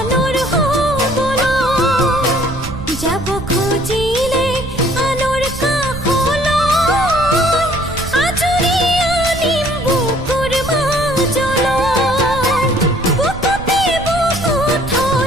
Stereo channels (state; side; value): noise; right; rumble, 10 dB below the sound